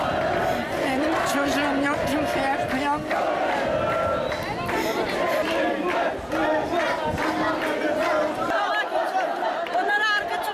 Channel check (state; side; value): identical; both; correlation 1.00